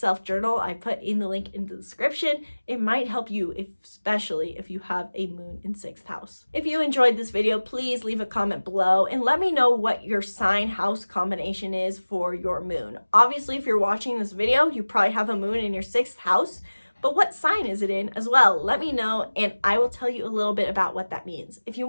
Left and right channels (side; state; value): both; inverted; correlation -1.00